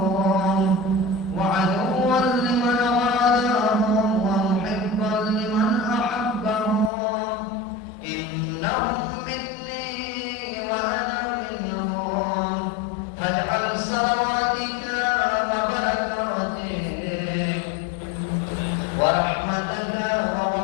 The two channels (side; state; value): right; drops out; at 6.9 s